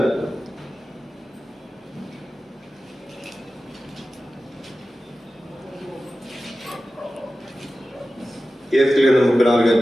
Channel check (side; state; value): both; normal; correlation 0.94